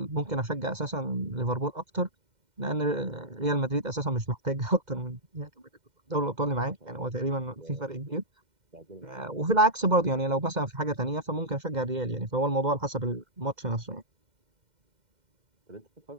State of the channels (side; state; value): left; late; 2.1 ms